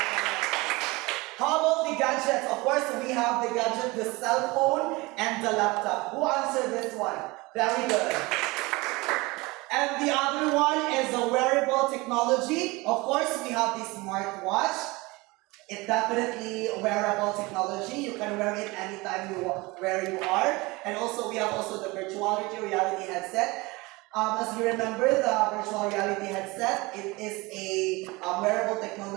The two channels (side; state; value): left; quieter; 23.3 dB